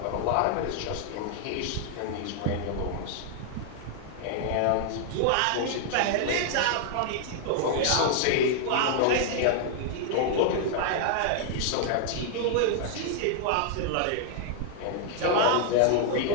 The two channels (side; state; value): both; different; correlation 0.00